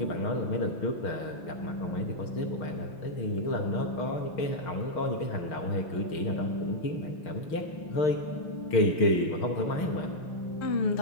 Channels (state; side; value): late; right; 6.4 ms